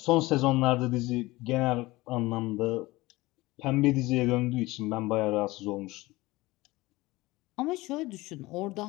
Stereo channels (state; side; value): quieter; right; 20.3 dB